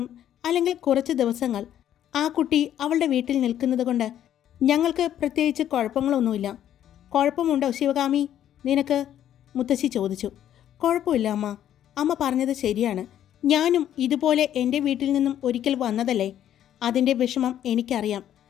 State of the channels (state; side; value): quieter; right; 10.9 dB